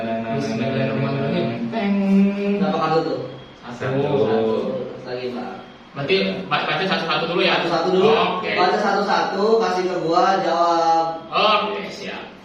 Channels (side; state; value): both; identical; correlation 1.00